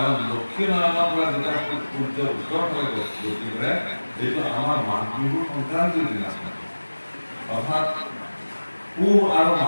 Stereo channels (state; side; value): inverted; both; correlation -1.00